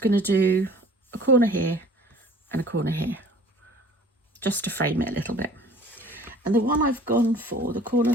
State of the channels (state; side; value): normal; both; correlation 0.49